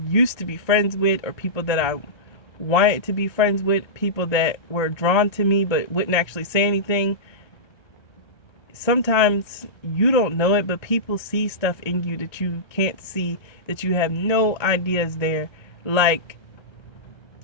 used to be friends with, or people that I wanted to be friends with, people that were drawn to me but wouldn't actually say anything. Sometimes you don't know it, but people see stuff in you that you can't see, that you have no idea is there. Like,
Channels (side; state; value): right; late; 1.3 ms